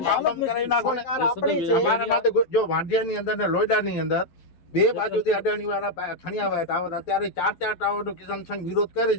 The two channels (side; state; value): right; late; 12 ms